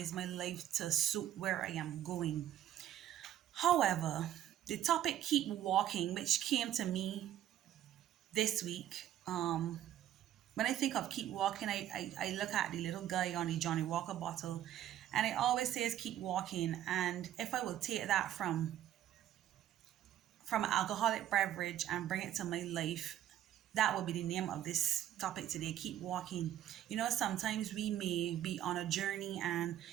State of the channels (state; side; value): quieter; left; 11.7 dB